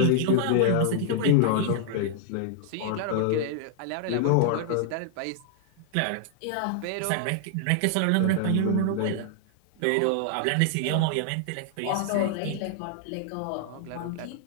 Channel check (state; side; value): different; both; correlation -0.01